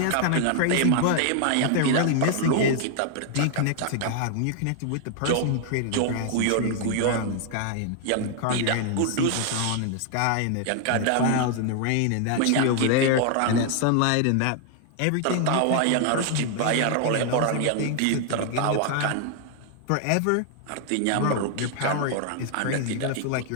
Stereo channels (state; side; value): different; both; correlation 0.00